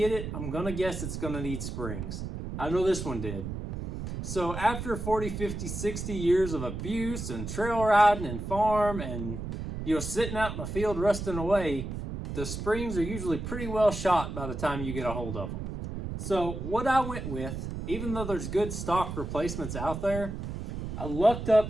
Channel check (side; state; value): right; noise; rumble, 6 dB below the sound